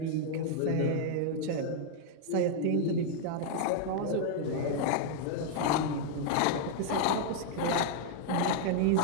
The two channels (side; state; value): both; different; correlation -0.01